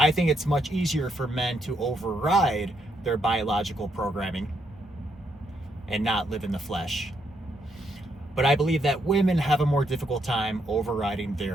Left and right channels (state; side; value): normal; both; correlation 0.76